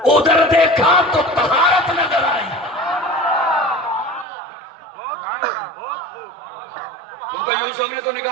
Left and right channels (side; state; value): left; drops out; at 4.2 s